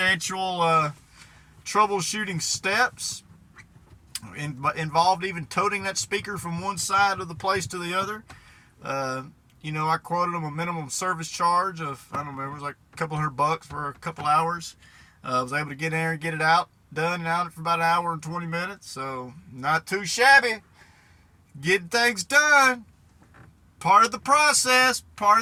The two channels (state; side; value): identical; both; correlation 1.00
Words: troubleshooting steps. Involved even toting that speaker from one side of the place to the other. I quoted them a minimum service charge of, I don't remember, it was like a couple $100 for a couple hours. I was able to get in there and get it done and out for about an hour and 20 minutes. So not too shabby. Getting things done. Part of the process, part